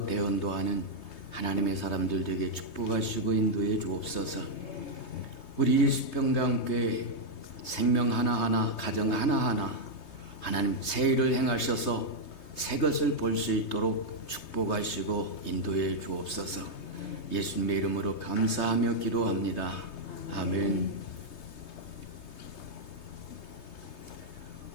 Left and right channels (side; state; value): right; late; 3.2 ms